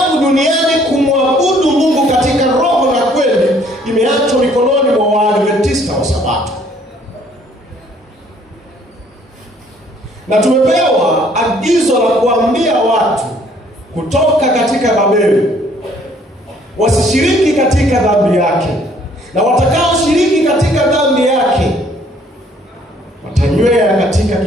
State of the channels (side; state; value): both; normal; correlation 0.61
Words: duniani kumwabudu Mungu katika roho na kweli imeachwa mikononi mwa Waadventista wa Sabato. Na tumepewa agizo la kuambia watu kutoka katika Babeli wasishiriki katika dhambi yake, na watakaoshiriki katika dhambi yake watanywea katika